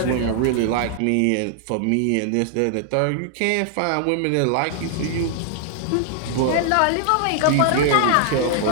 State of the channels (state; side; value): different; both; correlation 0.00